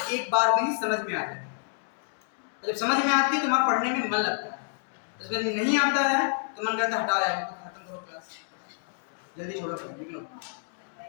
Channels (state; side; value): silent; right; digital silence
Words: एक बार में ही समझ में आ जाए, जब समझ में आती है तो वहाँ पढ़ने में मन लगता है, जब नहीं आता है तो मन करता है हटा जाए, खत्म करो क्लास, जल्दी छोड़ो निकलो।